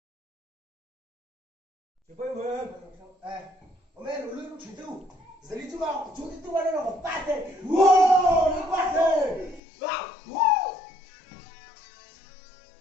Chị quay về. Ông em lùi lúc chuyển tu. Giờ đi chú vào, chú đi tu vào đây là một bát thế. Wow, nó bát thế. Wow.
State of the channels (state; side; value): drops out; right; at 9.6 s